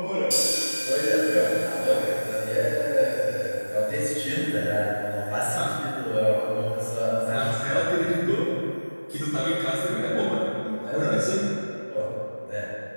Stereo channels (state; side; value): inverted; both; correlation -1.00